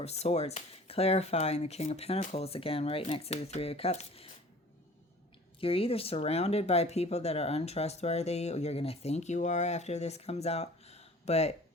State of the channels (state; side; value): normal; both; correlation 0.47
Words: of Swords, clarifying the King of Pentacles again, right next to the Three of Cups. You're either surrounded by people that are untrustworthy, or you're going to think you are after this comes out. But